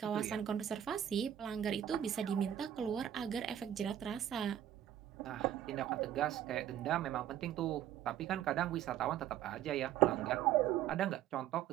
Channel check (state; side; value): quieter; left; 10.9 dB